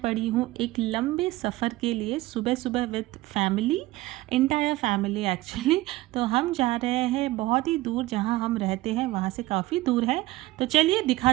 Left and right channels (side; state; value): left; quieter; 18.3 dB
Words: हूँ एक लंबे सफ़र के लिए सुबह सुबह with family, entire family actually. तो हम जा रहे हैं बहुत ही दूर, जहाँ हम रहते हैं वहाँ से काफ़ी दूर है। तो चलिए